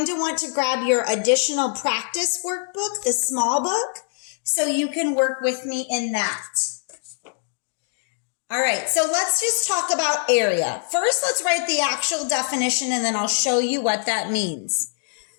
to want to grab your additional practice workbook, the small book, so you can work with me in that. All right, so let's just talk about area. First, let's write the actual definition, and then I'll show you what that means.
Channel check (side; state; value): right; silent; digital silence